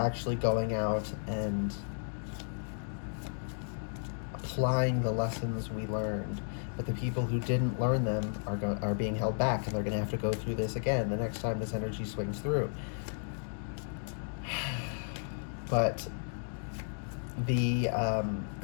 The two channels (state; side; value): silent; right; digital silence